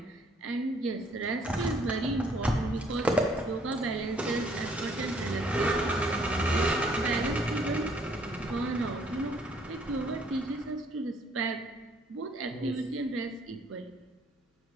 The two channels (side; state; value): both; normal; correlation 0.64